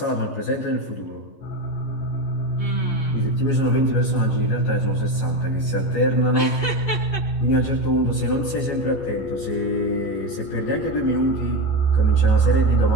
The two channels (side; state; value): right; late; 14 ms